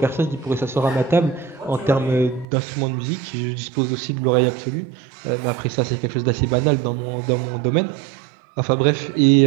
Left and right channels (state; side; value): drops out; left; at 2.5 s